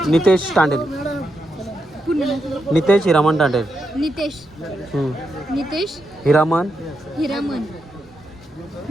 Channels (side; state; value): both; normal; correlation 0.84